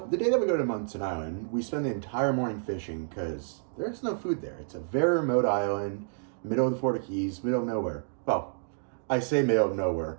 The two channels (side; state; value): left; silent; digital silence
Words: the day that we go to Munson Island, we spend the entire morning fishing because there's no food there. It's a very remote island, middle of the Florida Keys, middle of nowhere. Well, I say middle of nowhere.